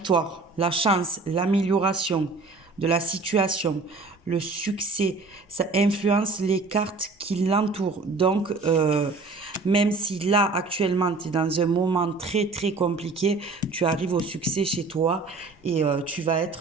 la chance, l'amélioration de la situation, le succès, ça influence les cartes qui l'entourent. Donc, même si là, actuellement, tu es dans un moment très, très compliqué, tu arrives au succès chez toi et tu vas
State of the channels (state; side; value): quieter; left; 3.8 dB